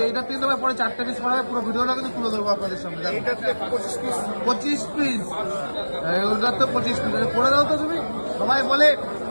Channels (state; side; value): inverted; both; correlation -1.00